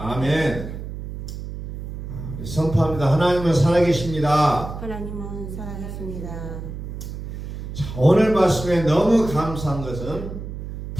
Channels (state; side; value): noise; right; hum, 8 dB below the sound